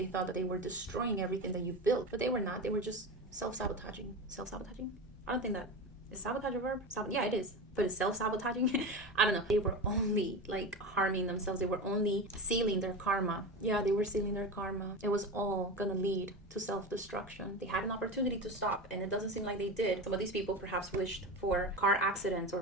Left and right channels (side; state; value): both; normal; correlation 0.25